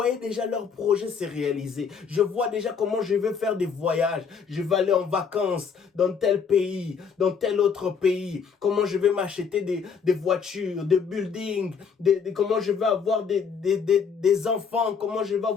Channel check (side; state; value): right; quieter; 6.1 dB